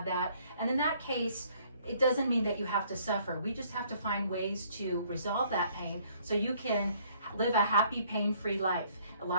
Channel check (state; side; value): inverted; both; correlation -0.62